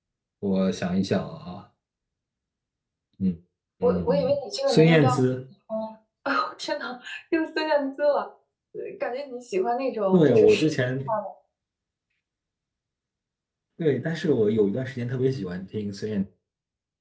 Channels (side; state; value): both; identical; correlation 1.00